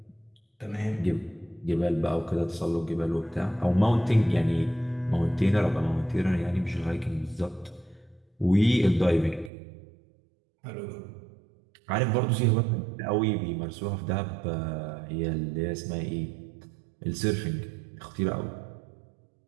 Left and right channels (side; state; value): left; drops out; at 9.5 s